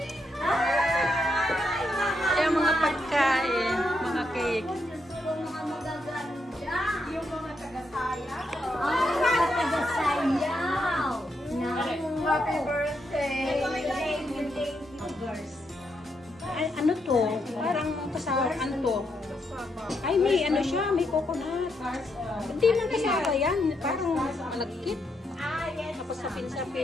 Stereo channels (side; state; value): both; normal; correlation 0.80